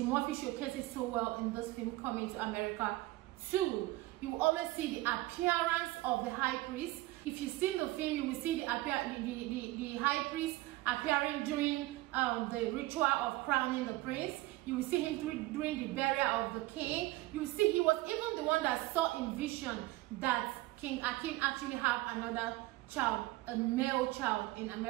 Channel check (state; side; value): quieter; left; 19.0 dB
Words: Murphy showcases so well in this film Coming to America 2. You will always see the appearance of the high priest. If you've seen the film, you will see the high priest appearing during the ritual of crowning the prince. You will see him during the burial of the king. You will see he was even the one that saw in vision that King Akin actually have another child, a male child in